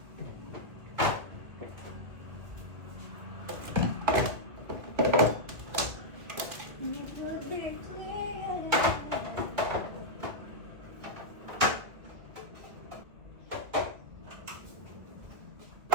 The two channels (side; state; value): left; late; 2.3 ms